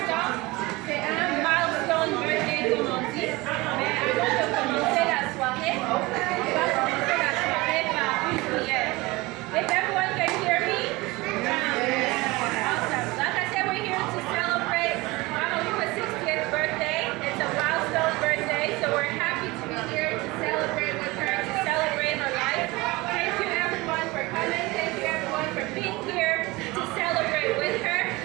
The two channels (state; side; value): quieter; left; 22.3 dB